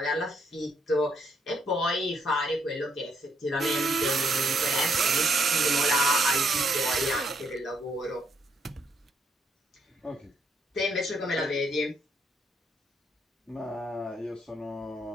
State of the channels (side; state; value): both; normal; correlation 0.73